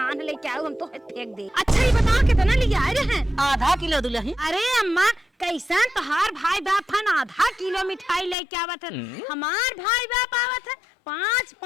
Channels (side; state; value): right; drops out; at 8.3 s